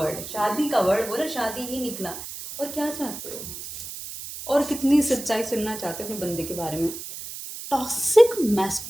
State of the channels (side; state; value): right; noise; hiss, 10 dB below the sound